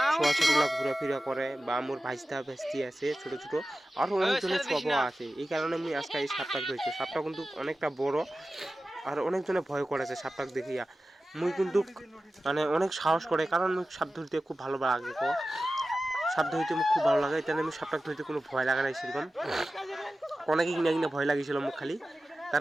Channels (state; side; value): normal; both; correlation 0.95